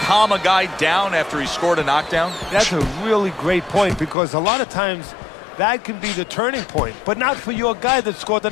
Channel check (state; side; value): drops out; right; at 4.2 s